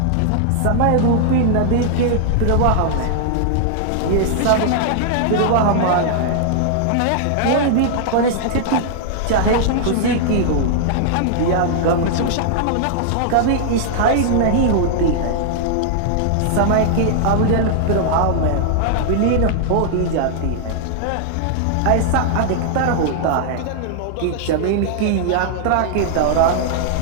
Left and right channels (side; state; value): both; different; correlation -0.01